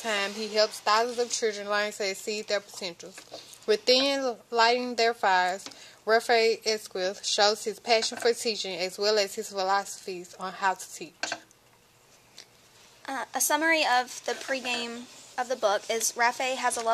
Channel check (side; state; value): both; identical; correlation 1.00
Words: he helps thousands of children learn to exceed their potentials. Within Lighting Their Fires, Rafe Esquith shows his passion for teaching as well as his philosophies on how to teach. A summary of the pregame of the book is Rafe has a